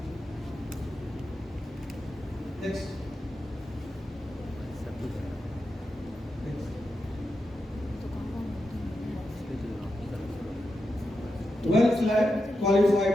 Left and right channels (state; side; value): normal; both; correlation 0.88